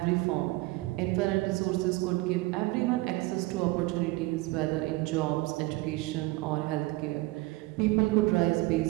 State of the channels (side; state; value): left; quieter; 21.2 dB